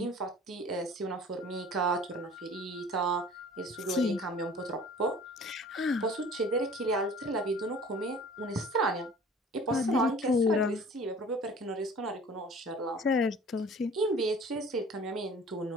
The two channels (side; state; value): both; normal; correlation 0.47